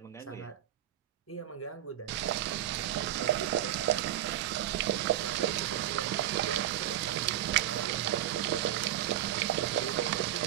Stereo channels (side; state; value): left; quieter; 12.6 dB